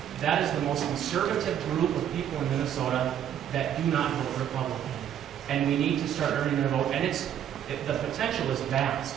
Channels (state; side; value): quieter; left; 10.0 dB